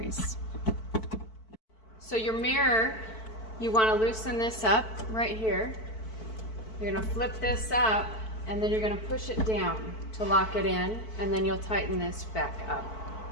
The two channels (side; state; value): right; late; 4.5 ms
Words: So your mirror, you want to loosen this up right here. You're going to flip this up, and then you're going to push it down to lock it in, and then you'll tighten this back up.